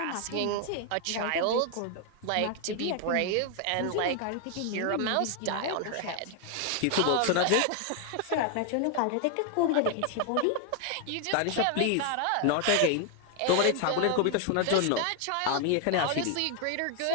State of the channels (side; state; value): both; different; correlation 0.00